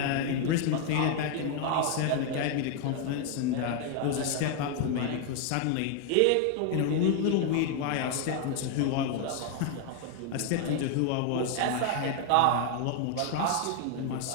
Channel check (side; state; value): both; different; correlation 0.00